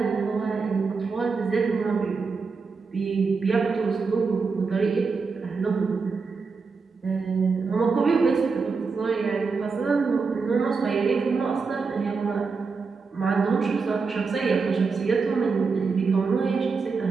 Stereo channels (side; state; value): left; quieter; 4.8 dB